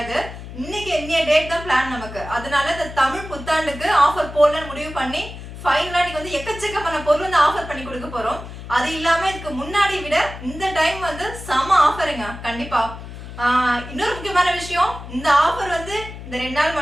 இன்னைக்கு இன்னைய டேட் தான் பிளான் நமக்கு. அதனால இந்த தமிழ் புத்தாண்டுக்கு ஆஃபர் போடலான்னு முடிவு பண்ணி ஃபைனலா நீங்க வந்து எக்கச்சக்கமான பொருள் வந்து ஆஃபர் பண்ணி கொடுக்க போறோம். அது இல்லாம இதுக்கு முன்னாடி விட இந்த டைம் வந்து செம ஆஃபருங்க. கண்டிப்பா இன்னொரு முக்கியமான விஷயம், இந்த ஆஃபர் வந்து இந்த 2 நாள்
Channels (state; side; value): noise; left; hum, 12 dB below the sound